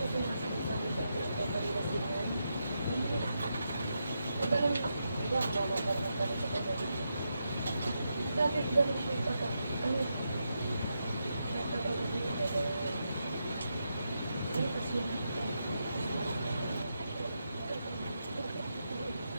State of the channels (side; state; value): both; inverted; correlation -0.84